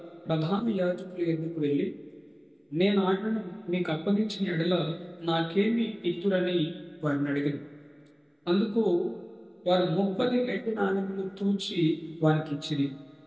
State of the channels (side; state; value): both; identical; correlation 1.00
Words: ప్రధాన యాజకుల ఎద్దుకు వెళ్ళి, నేను ఆయనను మీకు అప్పగించిన ఎడల నాకేమి ఇత్తురని వారిని అడిగాను. అందుకు వారు 30 వెండి నాణెములు తూచి వారికి ఇచ్చింది.